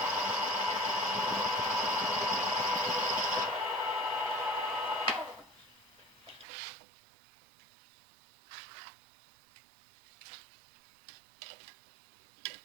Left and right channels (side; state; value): left; drops out; at 6.5 s